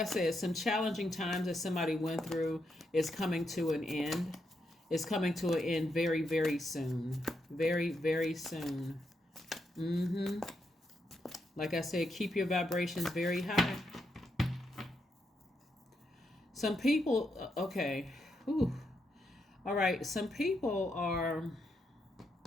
said, some challenging times that somebody went through is coming to an end. It's coming to an end very, very soon. Very, very soon. Like I said, keep your vibrations very high. Some people, okay. Whew. All right. Some people are,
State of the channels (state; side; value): normal; both; correlation 0.82